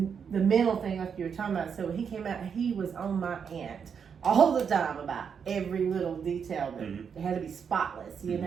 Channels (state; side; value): quieter; left; 6.8 dB